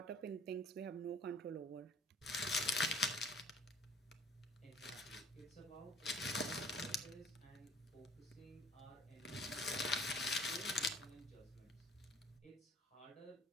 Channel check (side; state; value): both; normal; correlation 0.52